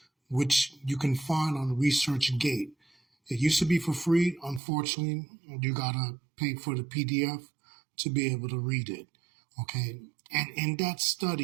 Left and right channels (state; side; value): drops out; left; at 4.6 s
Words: which you can find on ResearchGate. It used to be for free. Unfortunately, you gotta pay for the PDF to be able to read it. Okay. And in that